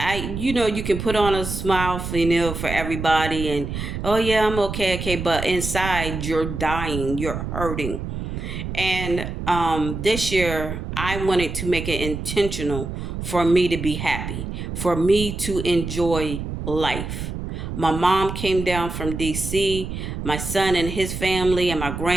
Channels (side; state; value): right; noise; rumble, 6 dB below the sound